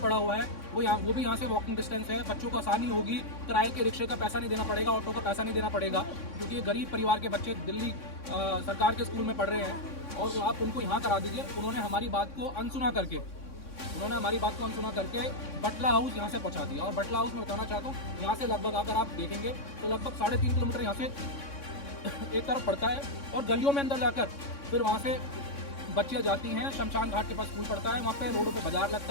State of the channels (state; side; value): late; right; 3.6 ms